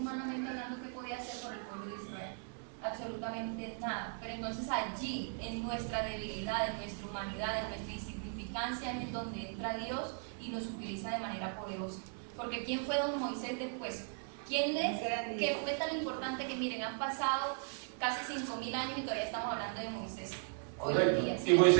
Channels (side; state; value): left; silent; 53 dB below the other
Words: hablando, ¿qué podía hacer con el pueblo de Israel? Absolutamente nada. Pero entonces allí, en nuestra debilidad, en nuestra humanidad, en nuestra insignificancia, es en donde entra Dios y nos utiliza de manera poderosa. Porque ¿quién fue don Moisés después? ¿Quién es que fue tan importante que, miren, han pasado casi 5.000 años y todavía estamos hablando de Moisés? Correcto. Hoy en día,